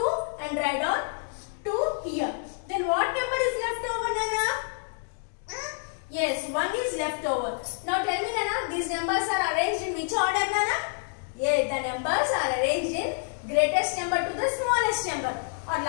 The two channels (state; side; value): silent; right; digital silence